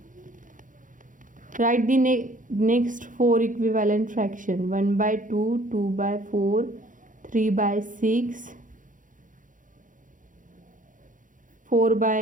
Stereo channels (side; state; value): left; late; 0.38 ms